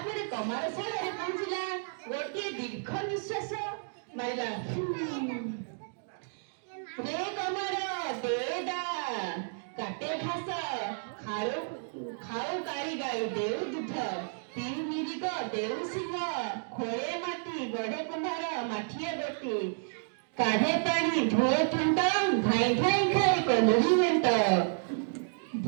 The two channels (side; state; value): left; silent; digital silence